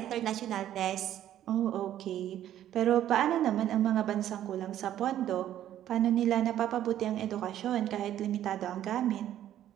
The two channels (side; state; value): left; quieter; 11.8 dB